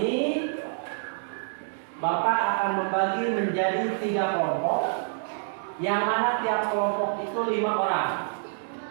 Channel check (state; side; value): silent; left; digital silence